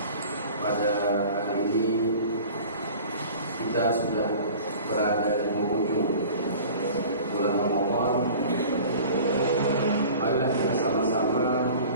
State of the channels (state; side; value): inverted; both; correlation -0.43